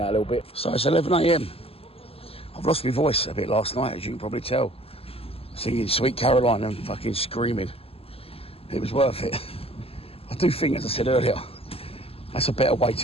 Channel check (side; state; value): right; late; 0.28 ms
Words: a little bit. So it's 11 a.m. I've lost my voice a bit last night, as you can probably tell. Singing Sweet Caroline and fucking screaming. It was worth it. I do think, as I said earlier, that's a better way